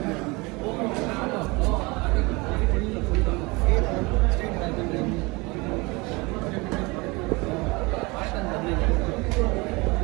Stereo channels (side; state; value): left; quieter; 25.3 dB